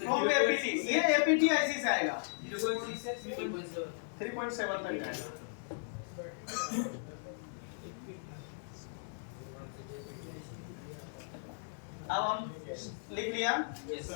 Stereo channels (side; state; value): right; silent; digital silence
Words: APT, ये APT IC से आएगा 3.7 तक जाएगा। अब हम लिख लिया।